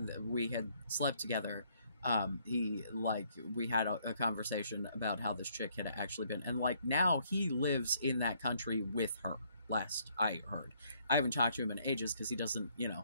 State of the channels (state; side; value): inverted; both; correlation -0.67